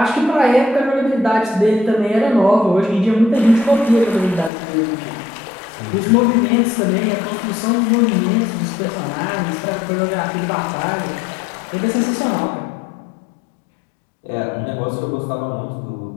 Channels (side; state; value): right; drops out; at 4.5 s